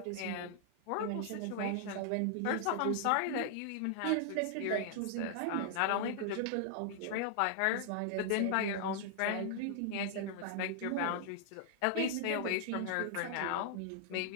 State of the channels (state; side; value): different; both; correlation -0.01